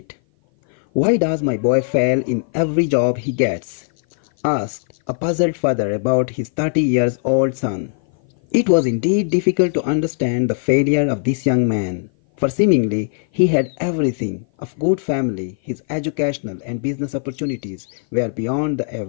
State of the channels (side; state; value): right; silent; 57 dB below the other